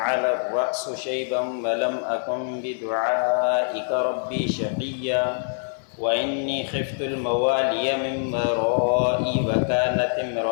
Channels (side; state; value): right; silent; 56 dB below the other